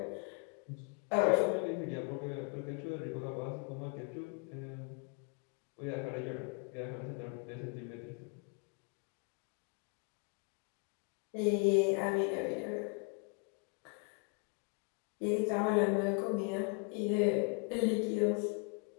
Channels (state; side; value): quieter; right; 33.7 dB